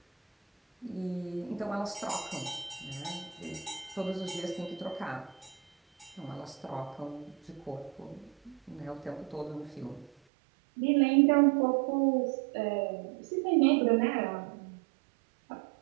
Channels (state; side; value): drops out; left; at 10.1 s